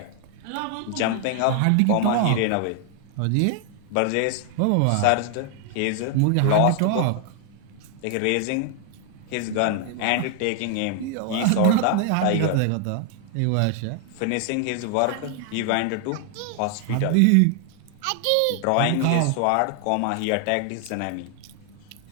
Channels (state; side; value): different; both; correlation 0.00